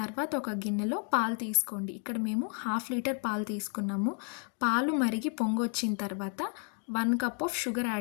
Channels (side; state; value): right; quieter; 39.2 dB